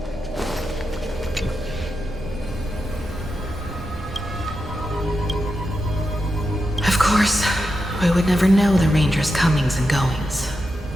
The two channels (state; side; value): normal; both; correlation 0.88